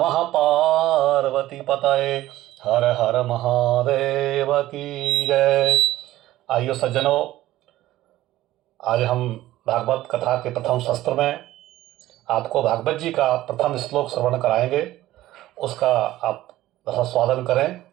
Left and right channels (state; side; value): quieter; left; 15.3 dB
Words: पार्वती पतये हर हर महादेव की जय। आइए सज्जनों, आज हम भागवत कथा के प्रथम शस्त्र में आपको भागवत जी का प्रथम श्लोक श्रवण कराएंगे। उसका आप स्वादन करें।